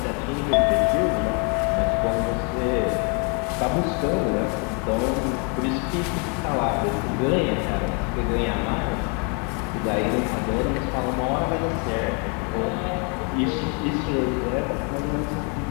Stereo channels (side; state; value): right; quieter; 35.9 dB